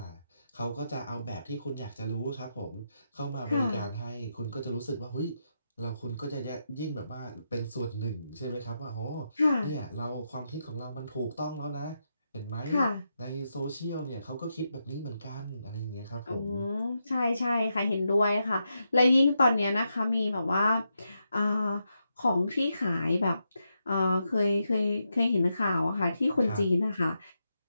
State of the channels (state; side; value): inverted; both; correlation -0.85